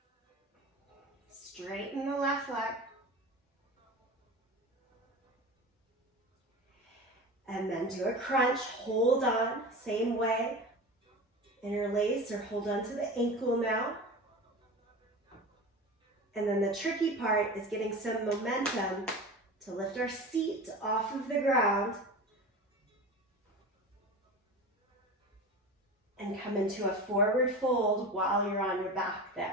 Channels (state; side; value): normal; both; correlation 0.31